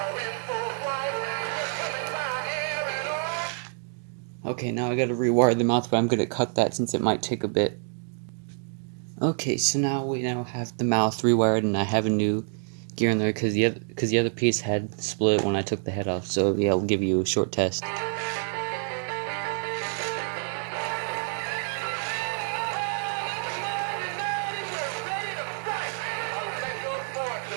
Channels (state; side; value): silent; left; 60 dB below the other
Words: Okay, now I gotta rewire the mouth, but I'm gonna cut that since it might take a bit. Okay, so now we have the mouth rewired, and I have a new gear in there because the other piece had split when I took the head off. So yeah, I'll give you a short test.